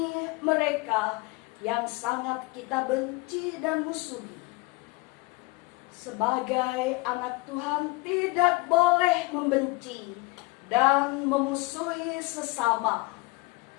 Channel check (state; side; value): quieter; right; 23.6 dB